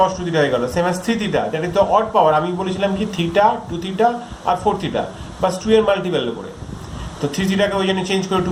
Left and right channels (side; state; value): both; identical; correlation 1.00